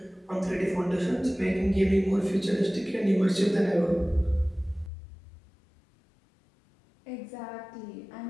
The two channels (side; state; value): right; drops out; at 4.9 s